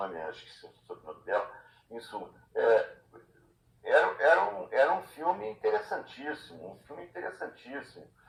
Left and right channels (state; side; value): identical; both; correlation 1.00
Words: acho que é o nome dela, isso, era um filme interessantíssimo,